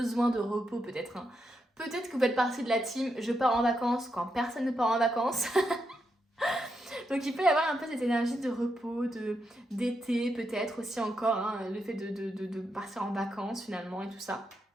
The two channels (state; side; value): normal; both; correlation 0.83